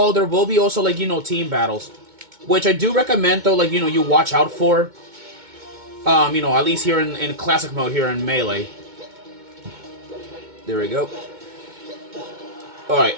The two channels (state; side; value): late; left; 2.2 ms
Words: there will be also, like, team battles. Which I do recommend, though, like, you watch out for. At least here in Classic mode here in Melee. There we go. Alright.